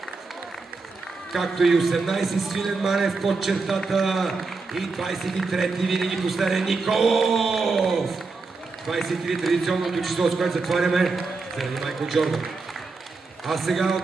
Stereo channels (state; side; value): quieter; left; 4.1 dB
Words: Както и 18 Свилен Манев под чертата. И 23-ти винаги последен Николов. 23 традиционното число, с което затваряме заради Майкъл Джордан. А сега